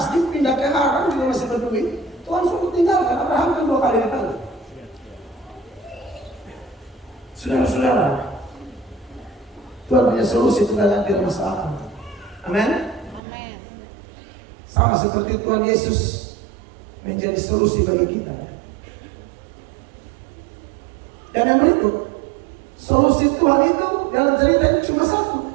pindah ke Haran juga masih berduit. Tuhan suruh tinggalkan. Abraham kan 2 kali dipanggil. Saudara-saudara, Tuhan punya solusi terhadap tidak masuk akal. Amin. Sama seperti Tuhan Yesus menjadi solusi bagi kita. Dan yang berikut, solusi Tuhan itu dalam cerita ini cuma satu.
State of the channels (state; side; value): drops out; left; at 13.2 s